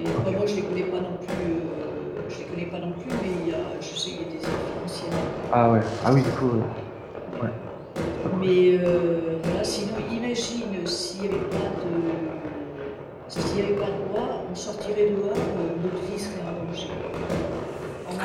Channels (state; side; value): identical; both; correlation 1.00